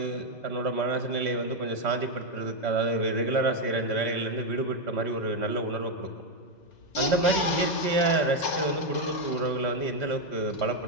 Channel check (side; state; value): right; late; 2.0 ms